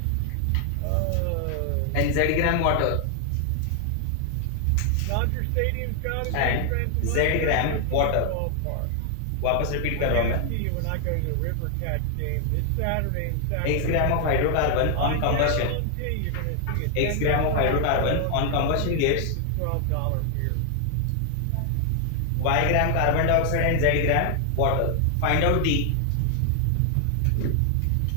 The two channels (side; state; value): both; different; correlation 0.00